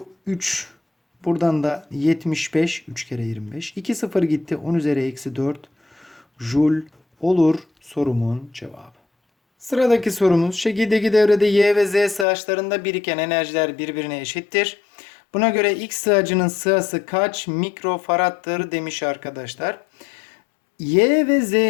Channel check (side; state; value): right; drops out; at 12.2 s